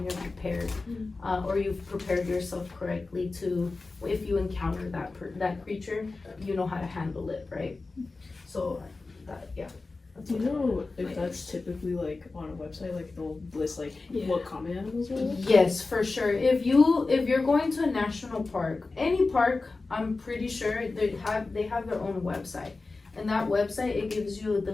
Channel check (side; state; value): right; quieter; 3.7 dB